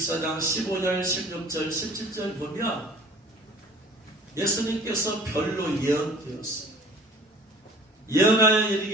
15절 16절 17절 보면 예수님께서 별로 예언되었어요. 예언하여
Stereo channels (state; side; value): normal; both; correlation 0.48